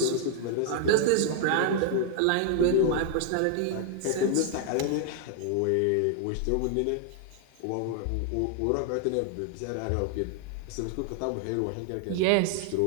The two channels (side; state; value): both; different; correlation 0.00